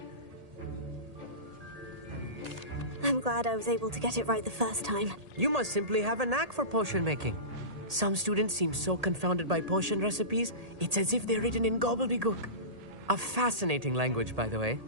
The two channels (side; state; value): left; late; 1.8 ms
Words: I'm glad I was able to get it right the first time. You must simply have a knack for potion making. Some students seem so confounded by potion recipes, it's as if they're written in gobbledygook. A fascinating language, by the way.